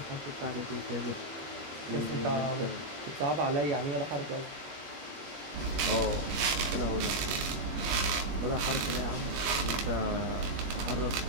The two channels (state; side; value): late; left; 21 ms